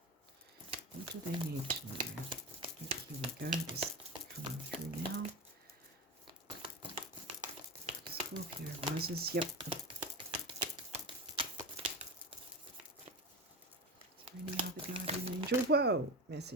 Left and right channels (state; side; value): normal; both; correlation 0.24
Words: What do they need to know? Here we go, this coming through now. Scorpio risers, yep. Is there any other guardian angel? Whoa,